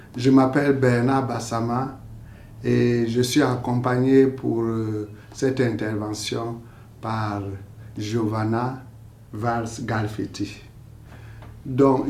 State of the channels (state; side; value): identical; both; correlation 1.00